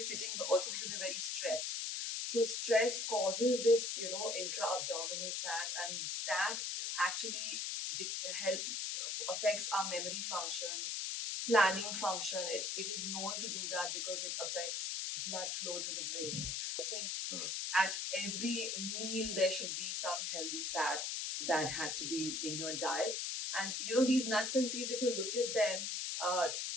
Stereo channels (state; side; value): noise; left; hiss, 1 dB below the sound